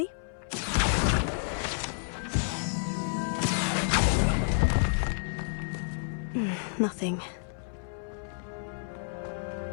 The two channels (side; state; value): right; silent; 58 dB below the other